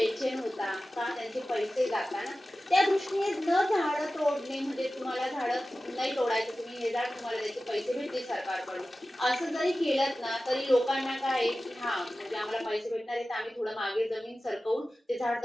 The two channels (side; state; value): both; normal; correlation 0.95